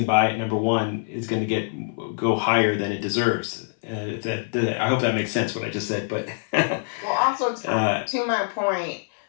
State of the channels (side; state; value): right; silent; 58 dB below the other